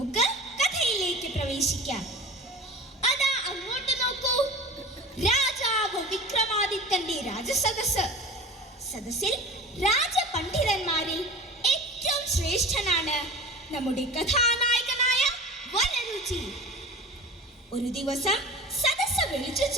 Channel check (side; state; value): both; normal; correlation 0.36